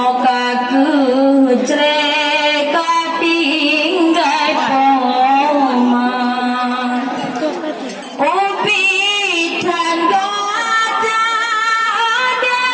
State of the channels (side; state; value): both; identical; correlation 1.00